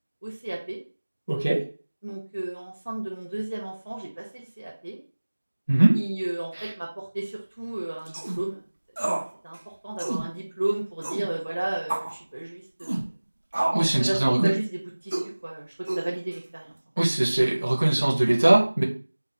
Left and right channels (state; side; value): inverted; both; correlation -1.00